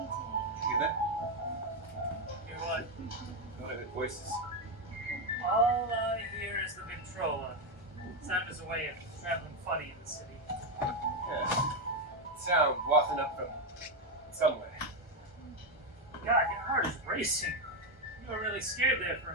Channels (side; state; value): both; normal; correlation 0.06